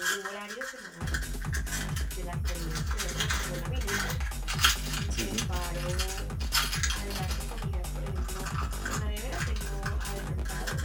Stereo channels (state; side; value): identical; both; correlation 1.00